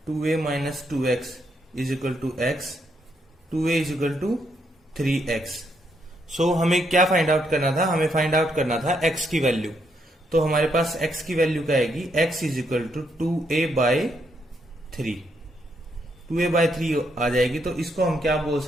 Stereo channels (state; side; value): normal; both; correlation 0.76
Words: 2a minus 2x is equal to x, 2a is equal to 3x। So हमें क्या find out करना था, हमें फाइंड आउट करना था x की वैल्यू। तो हमारे पास x की वैल्यू क्या आएगी, x is equal to 2a/3, 2a/3 आ जाएगी। तो इसको हम क्या बोल